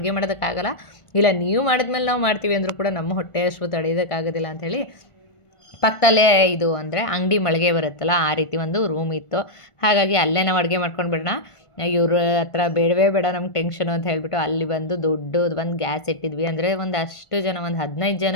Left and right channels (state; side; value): late; right; 1.5 ms